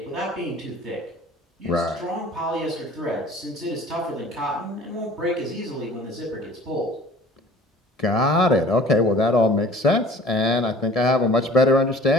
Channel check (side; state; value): both; normal; correlation 0.47